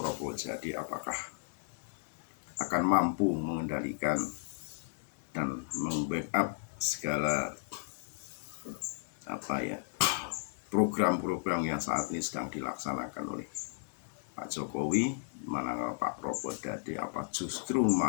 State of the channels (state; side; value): silent; right; 55 dB below the other